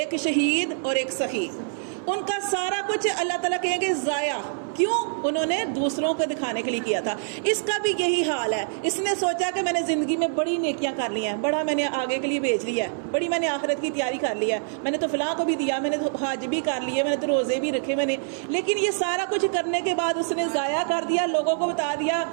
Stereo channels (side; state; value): left; silent; 62 dB below the other